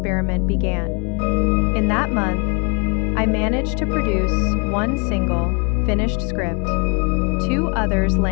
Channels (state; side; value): quieter; right; 34.8 dB